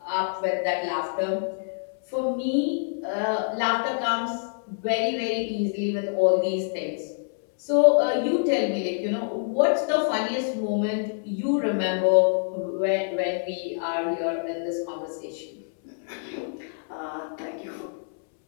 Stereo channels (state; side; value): silent; right; 61 dB below the other